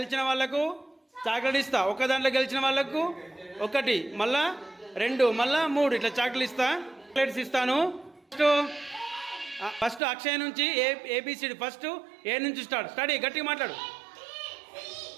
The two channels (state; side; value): drops out; left; at 10.0 s